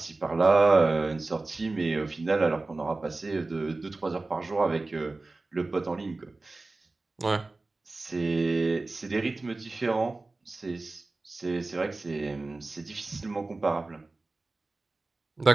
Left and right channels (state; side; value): quieter; left; 3.3 dB